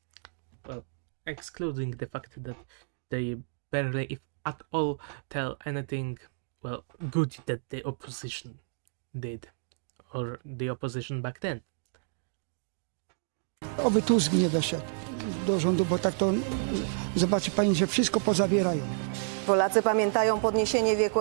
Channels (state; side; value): silent; left; digital silence